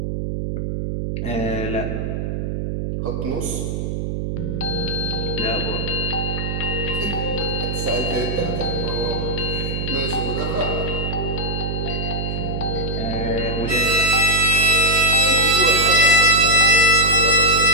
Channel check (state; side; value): noise; right; hum, 3 dB below the sound